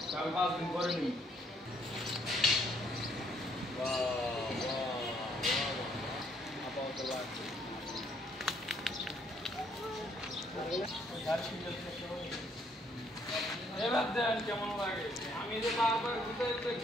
আমি 5 দিন পরে নিই এবার দেন কেমন লাগে আমি যে বারবার ঘুরতে ঘুরতে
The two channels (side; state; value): both; normal; correlation 0.68